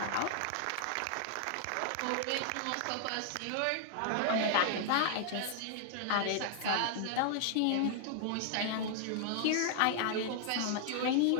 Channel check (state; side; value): different; both; correlation 0.00